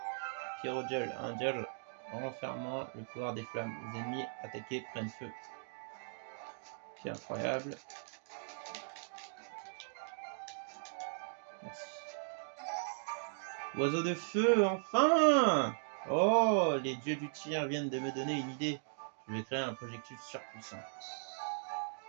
Pyrodial, un dial renfermant le pouvoir des flammes. Les ennemis attaqués prennent feu. C'est incroyable. Merci. Oiseau de feu, enfin! Oh, les dieux du tir viennent de me donner une idée. Je vais créer un projectile surpuissant.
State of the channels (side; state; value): left; silent; digital silence